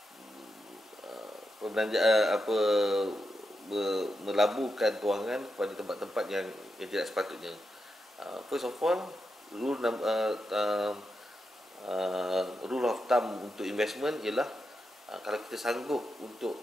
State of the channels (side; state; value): both; normal; correlation 0.87